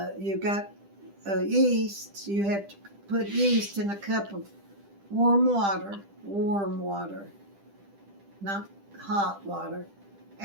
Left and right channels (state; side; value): late; left; 10 ms